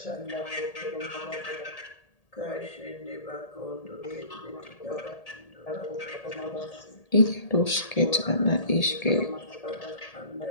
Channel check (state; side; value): late; right; 1.8 ms